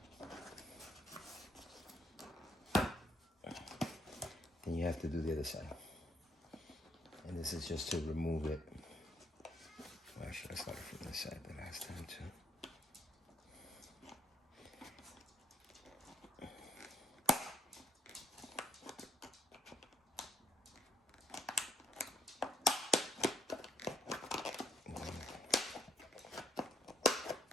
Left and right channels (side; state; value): both; normal; correlation 0.71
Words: Then you have to do the other side. And this is just to remove it. Well, actually, I started from this side the last time too.